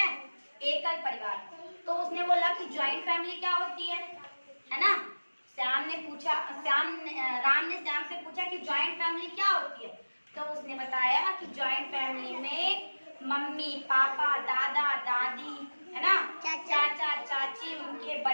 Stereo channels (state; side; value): inverted; both; correlation -1.00